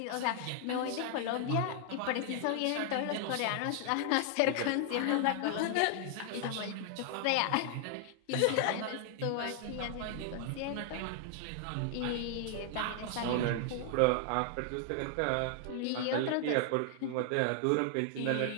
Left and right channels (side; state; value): both; different; correlation 0.00